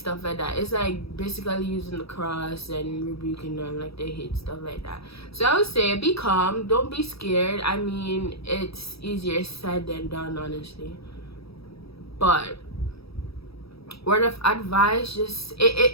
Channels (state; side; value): late; right; 0.77 ms